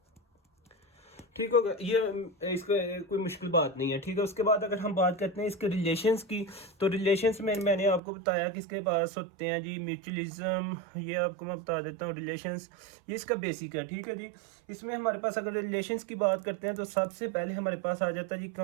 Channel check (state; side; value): drops out; left; at 8.0 s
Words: ठीक होगा, ये इसका कोई मुश्किल बात नहीं है। ठीक है, उसके बाद अगर हम बात करते हैं इसके रिलेशंस की, तो रिलेशंस में मैंने आपको बताया कि इसके पास होते हैं जी म्यूचुअलिज्म। ये आपको मैं बता देता हूँ रिलेशंस, ये इसका बेसिक है। ठीक है जी, इसमें हमारे पास अगर रिलेशंस की बात करते हैं तो सबसे पहले हमारे पास आ जाता है जी